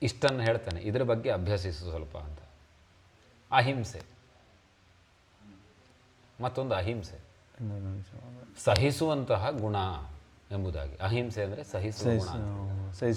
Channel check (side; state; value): both; identical; correlation 1.00